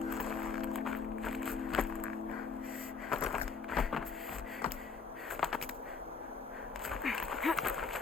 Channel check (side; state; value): right; quieter; 5.3 dB